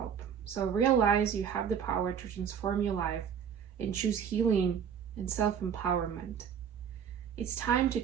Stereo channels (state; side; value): quieter; left; 7.9 dB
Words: so realize you have the power to transform your life and choose healing and self-empowerment. It's time to